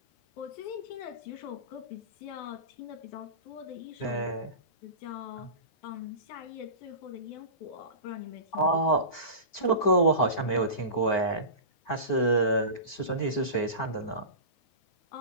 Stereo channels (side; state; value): right; late; 9.6 ms